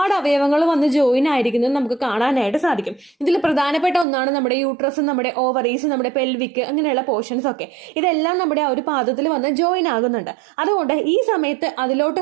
അവയവങ്ങൾ വന്ന് ജോയിൻ ആയിരിക്കുന്നത് നമുക്ക് കാണാനായിട്ട് സാധിക്കും. ഇതിൽ പ്രധാനപ്പെട്ട ഒന്നാണ് നമ്മുടെ യൂട്രസ്, നമ്മുടെ ഓവറീസ്, നമ്മുടെ പെൽവിക്, അങ്ങനെയുള്ള പോർഷൻസ് ഒക്കെ. ഇതെല്ലാം നമ്മുടെ ആ ഒരു പാദത്തിൽ വന്ന് ജോയിൻ ആകുന്നുണ്ട്. അതുകൊണ്ട് ഈ സമയത്ത്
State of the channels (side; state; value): left; drops out; at 4.0 s